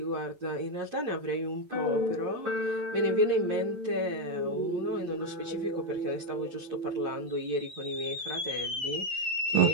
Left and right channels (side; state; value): left; late; 11 ms